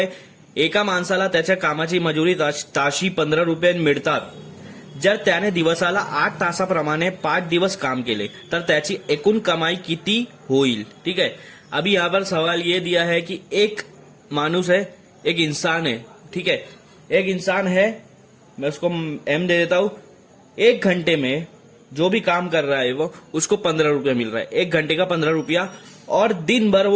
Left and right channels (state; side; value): identical; both; correlation 1.00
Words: एका माणसाला त्याच्या कामाची मजुरी ताशी 15 रुपये मिळतात, जर त्याने दिवसाला 8 तासाप्रमाणे 5 दिवस काम केले तर त्याची एकूण कमाई किती होईल। ठीक है, अभी यहाँ पर सवाल ये दिया है कि एक मानुस है, एक इंसान है। ठीक है, एक इंसान है, मैं उसको एम दे देता हूं, 1 घंटे में जो भी काम कर रहा है वो उसको 15 रुपया मिल रहा है, 1 घंटे का 15 रुपया, और दिन भर